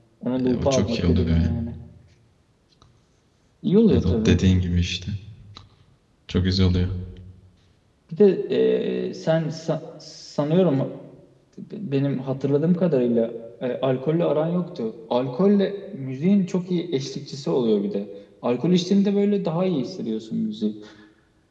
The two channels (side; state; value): both; identical; correlation 1.00